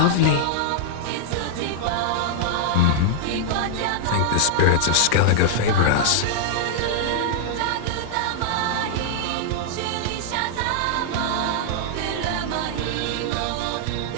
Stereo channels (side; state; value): both; different; correlation -0.01